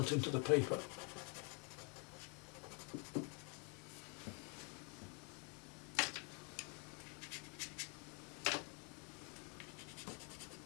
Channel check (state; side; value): quieter; right; 36.9 dB